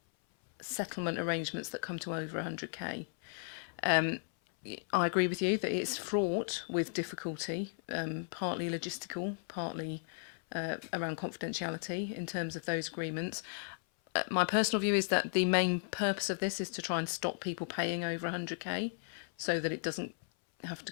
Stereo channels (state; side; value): silent; right; 54 dB below the other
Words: settlement arrangements that come to over 100k. I agree with you that it's fraught with difficulty, partly logistical, partly around confidentiality in terms of those agreements. My personal view is that the main purpose of this is to try and stop people paying over 100k so that it doesn't have to